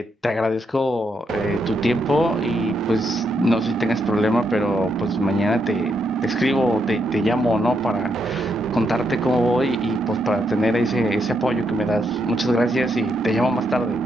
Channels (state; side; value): normal; both; correlation 0.79